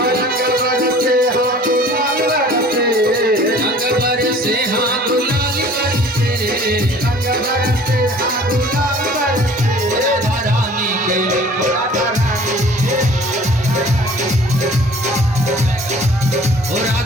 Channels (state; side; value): normal; both; correlation 0.49